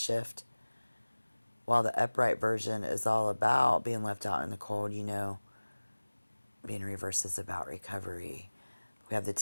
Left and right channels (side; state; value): both; inverted; correlation -1.00